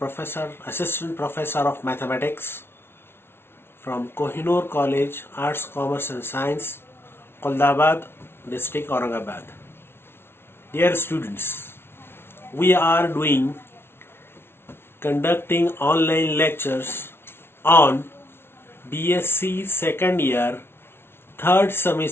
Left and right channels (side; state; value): right; late; 0.12 ms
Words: professor, assistant professor of mathematics from Kohinoor College, Arts, Commerce and Science, Qoldabad, District, Aurangabad. Dear students, we are conducting online lectures on BSc second year, third